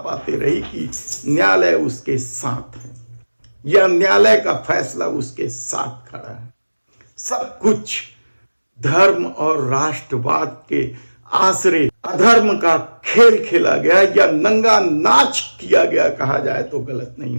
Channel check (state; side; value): inverted; both; correlation -1.00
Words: रही कि न्यायालय उसके साथ है, यह न्यायालय का फैसला उसके साथ खड़ा है। सब कुछ धर्म और राष्ट्रवाद के आसरे अधर्म का खेल खेला गया या नंगा नाच किया गया कहा जाए तो गलत नहीं